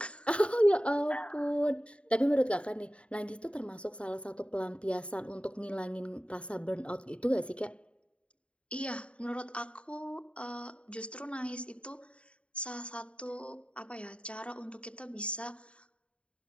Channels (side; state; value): right; late; 0.059 ms